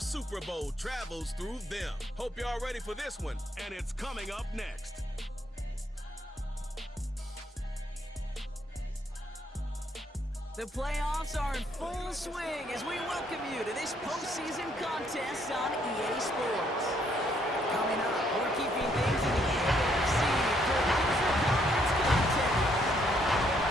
Super Bowl travels through them. Hope y'all ready for this one, and it's coming up next. The playoffs are in full swing as we welcome you to this postseason contest on EA Sports. Coming up, we're keeping things in the AFC for an intra-conference contest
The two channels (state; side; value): normal; both; correlation 0.70